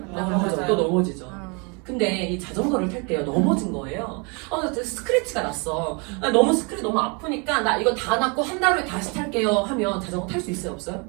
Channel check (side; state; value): left; quieter; 32.4 dB